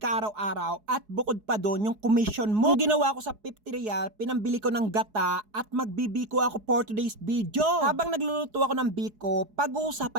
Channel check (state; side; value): late; left; 4.7 ms